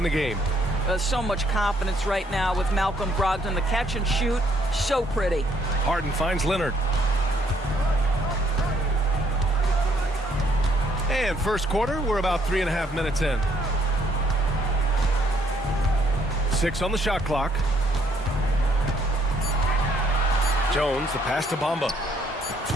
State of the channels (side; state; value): both; normal; correlation 0.68